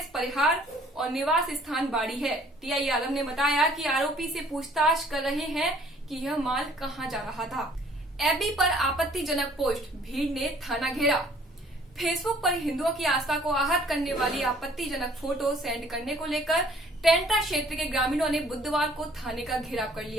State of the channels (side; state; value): both; normal; correlation 0.57